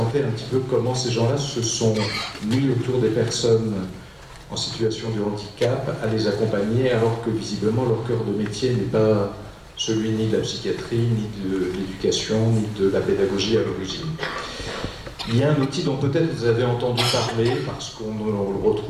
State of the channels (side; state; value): both; identical; correlation 1.00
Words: un petit peu comment ces gens-là se sont mis autour des personnes en situation de handicap, à les accompagner, alors que visiblement leur cœur de métier n'est pas celui ni de la psychiatrie, ni de l'éducation, ni de la pédagogie à l'origine. Il y a un outil dont peut-être vous avez entendu parler, parce qu'on le